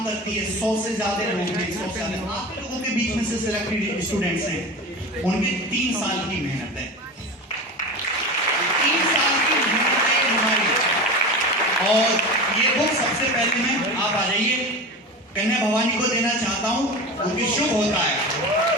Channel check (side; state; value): both; normal; correlation 0.29